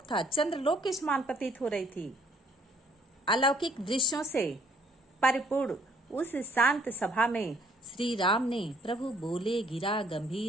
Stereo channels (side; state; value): both; normal; correlation 0.63